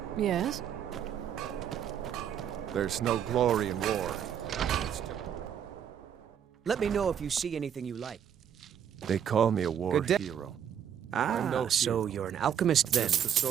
Yes? There's no glory in war. Let me know if you see anything you like. They call me a war Good day. hero. Ah, no so hero. you're an alchemist then. Just a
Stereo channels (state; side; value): quieter; left; 8.9 dB